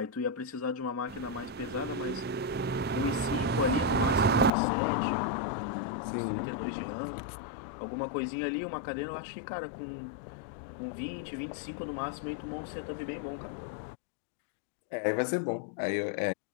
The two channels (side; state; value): right; drops out; at 4.5 s